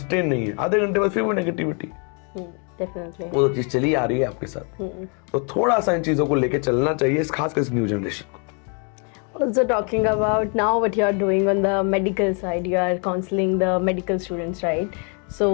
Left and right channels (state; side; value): quieter; right; 38.0 dB